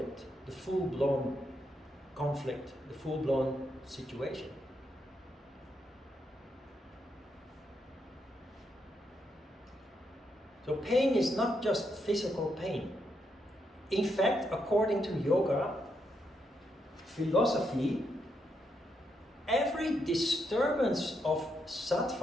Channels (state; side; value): normal; both; correlation 0.80